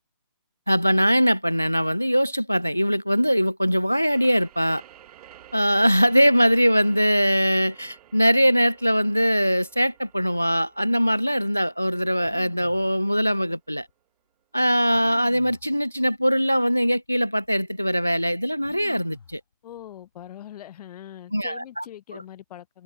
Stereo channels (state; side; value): inverted; both; correlation -0.98